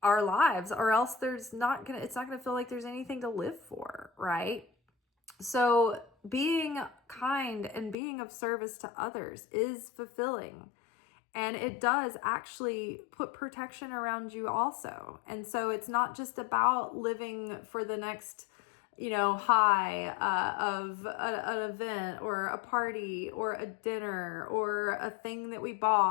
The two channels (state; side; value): drops out; right; at 8.0 s